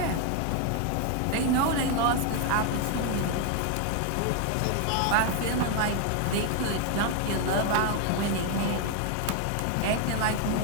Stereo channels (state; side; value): different; both; correlation 0.01